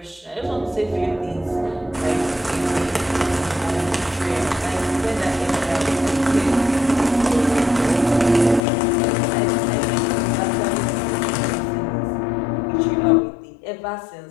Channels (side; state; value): right; drops out; at 8.6 s